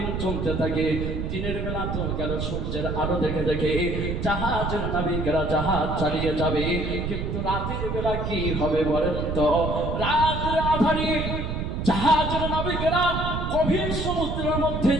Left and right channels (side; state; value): right; noise; rumble, 3 dB below the sound